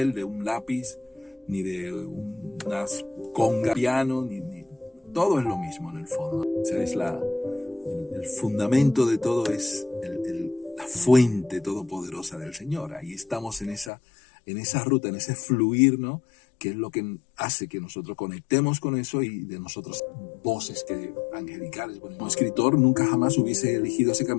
de un lápiz, ni de unas conga piano, ni todo es lo mismo en el fondo. O sea, es el fundamento de todo, es la fuente todopoderosa del Señor. Ahí estamos en esa ruta, en ese fluir, ¿no? Que es lo que hace que nosotros conectemos con eso y de nosotros voces angelicales. Bueno, como escritor nunca jamás hubiese elegido ese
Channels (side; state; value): right; drops out; at 13.9 s